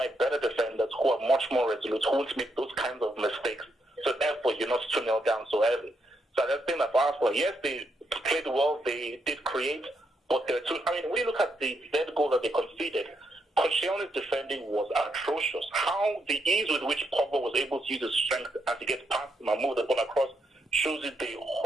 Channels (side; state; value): both; normal; correlation 0.79